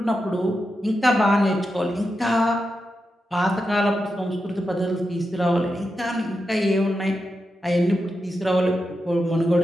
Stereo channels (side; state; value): both; normal; correlation 0.88